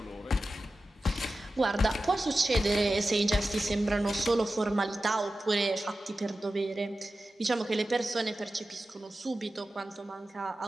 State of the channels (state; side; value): normal; both; correlation 0.94